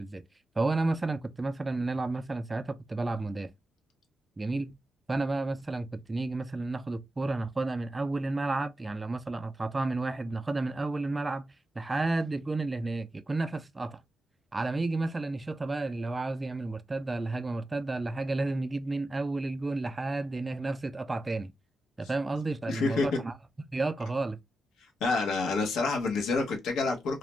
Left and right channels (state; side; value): normal; both; correlation 0.90